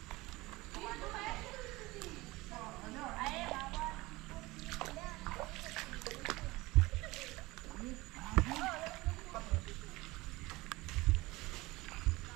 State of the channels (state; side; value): quieter; left; 20.9 dB